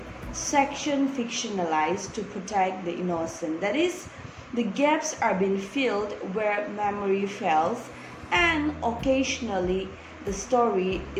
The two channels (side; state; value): both; identical; correlation 1.00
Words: section fictionalized to protect the innocent. That is, the gaps are being filled where memory fails, and occasionally the story